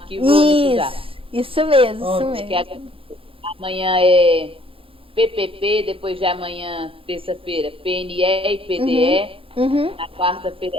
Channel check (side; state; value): left; late; 0.27 ms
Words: único já. Isso mesmo. Amanhã é PPP, depois de amanhã, terça-feira, PNE e PDE. Na quarta-feira